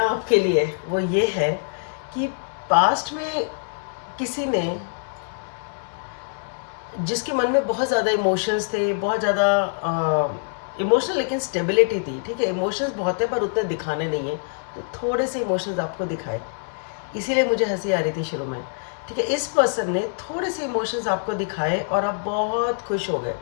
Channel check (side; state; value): right; silent; 62 dB below the other